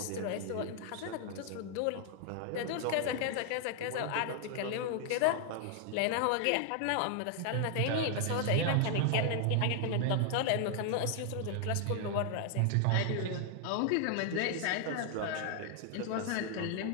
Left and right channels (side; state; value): both; different; correlation 0.00